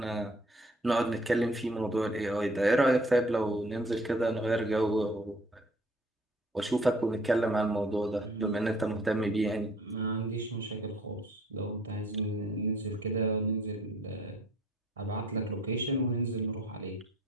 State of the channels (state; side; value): normal; both; correlation 0.57